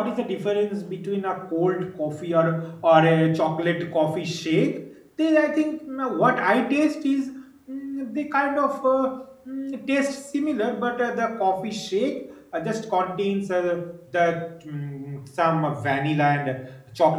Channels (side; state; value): both; identical; correlation 1.00